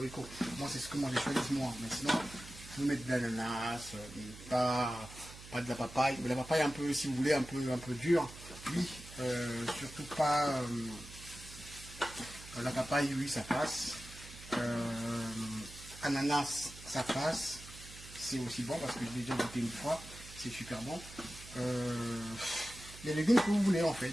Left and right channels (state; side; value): noise; right; hum, 16 dB below the sound